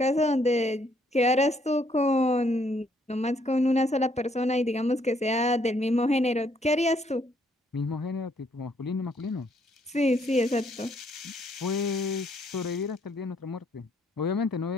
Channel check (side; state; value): both; normal; correlation 0.69